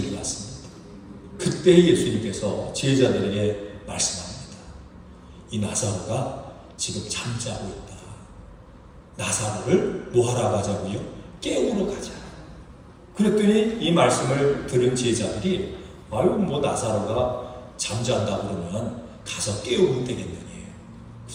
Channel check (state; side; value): identical; both; correlation 1.00